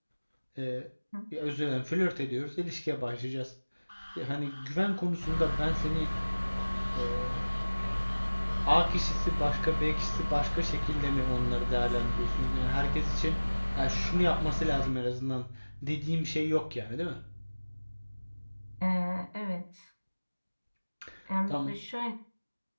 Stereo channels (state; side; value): inverted; both; correlation -1.00